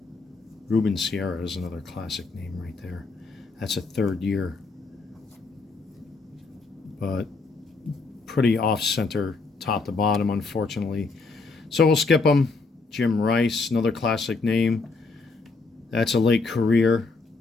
Ruben Sierra is another classic name right there. That's a 3rd year. But pretty off-center, top to bottom, unfortunately. So we'll skip them. Jim Rice, another classic name. That's a late career.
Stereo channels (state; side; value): quieter; right; 3.9 dB